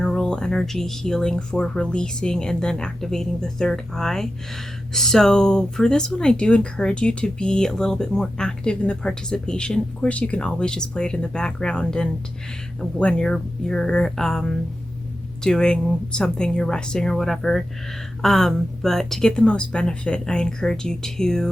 energy healing for releasing and then activating the third eye. So for this one, I do encourage you to be a little bit more active in the participation. Of course, you can always just play it in the background, and when you're doing something, you're resting or whatever. But to get the most benefit, I encourage you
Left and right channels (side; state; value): both; normal; correlation 0.91